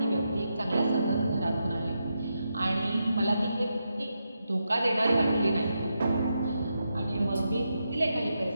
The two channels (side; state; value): both; inverted; correlation -0.85